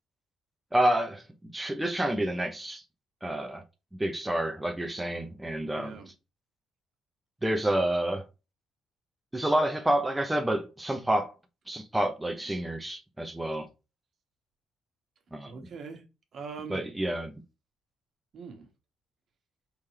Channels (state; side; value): normal; both; correlation 0.93